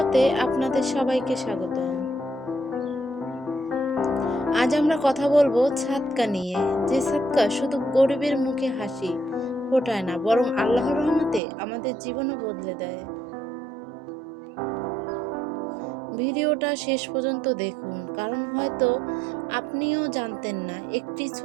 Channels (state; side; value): drops out; left; at 11.4 s